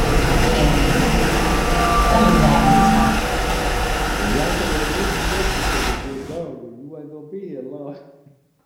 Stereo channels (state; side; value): identical; both; correlation 1.00